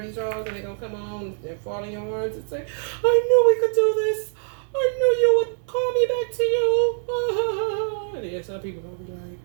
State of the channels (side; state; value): left; silent; digital silence